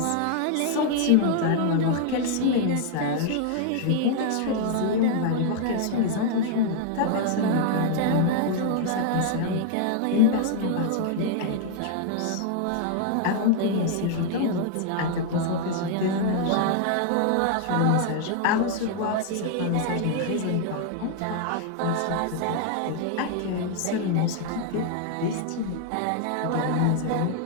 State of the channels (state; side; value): different; both; correlation 0.00